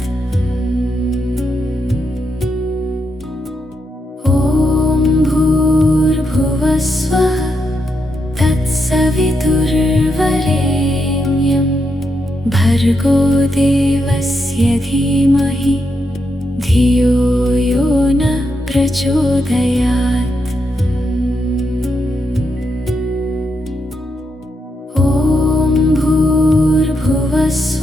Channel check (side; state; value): both; normal; correlation 0.83